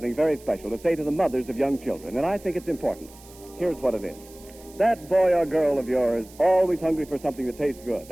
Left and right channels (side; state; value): right; noise; hiss, 22 dB below the sound